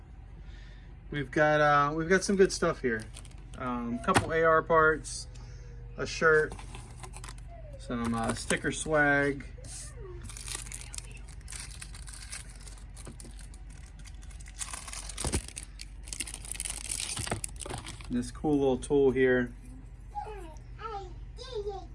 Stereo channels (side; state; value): both; identical; correlation 1.00